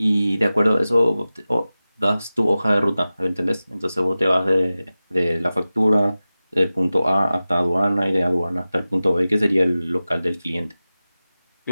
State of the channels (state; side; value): inverted; both; correlation -0.96